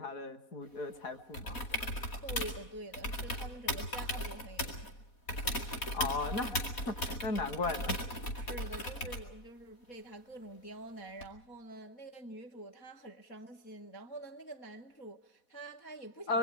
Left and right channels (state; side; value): late; right; 4.1 ms